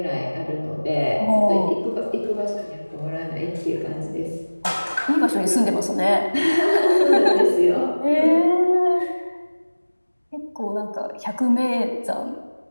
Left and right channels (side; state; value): both; inverted; correlation -1.00